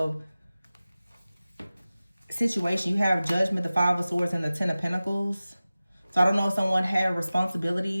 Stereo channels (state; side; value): inverted; both; correlation -0.96